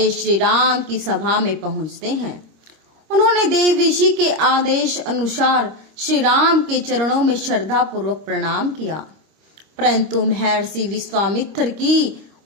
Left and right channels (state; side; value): late; left; 25 ms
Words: श्री राम की सभा में पहुंचते हैं। उन्होंने देव ऋषि के आदेश अनुसार श्री राम के चरणों में श्रद्धा पूर्वक प्रणाम किया, परंतु महर्षि विश्वामित्र की